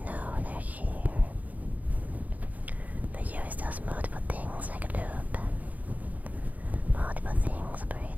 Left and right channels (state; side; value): late; left; 0.077 ms